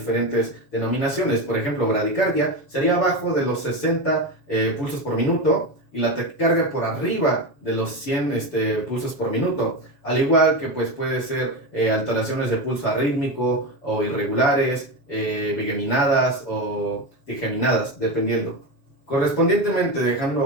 denominaciones. Por ejemplo, bradicardia sería abajo de los 60 pulsos por minuto y la taquicardia por arriba de los 100 pulsos por minuto. Al igual que pues, puede ser alteraciones de pulso arrítmico o irregulares, bigeminadas o digeminadas, dependiendo. Correspondientemente,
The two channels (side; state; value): right; late; 7.1 ms